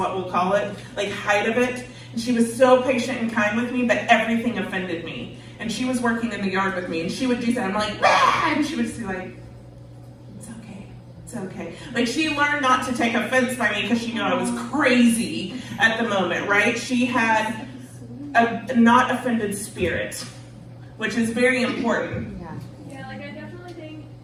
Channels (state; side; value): identical; both; correlation 1.00